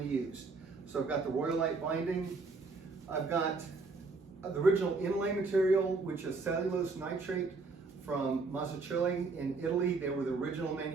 used. So I've got the Royalite binding. I've got the original inlay material, which is cellulose nitrate from Mazzocchilli in Italy. They were the original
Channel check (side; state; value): left; quieter; 4.0 dB